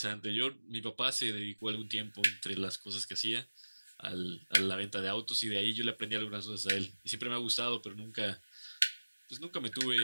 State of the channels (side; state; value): both; inverted; correlation -1.00